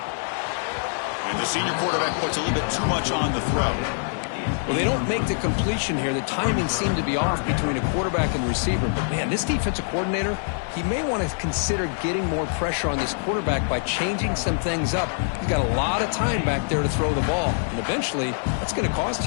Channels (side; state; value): right; silent; digital silence